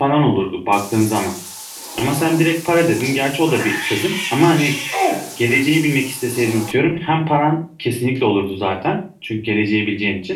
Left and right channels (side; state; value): both; identical; correlation 1.00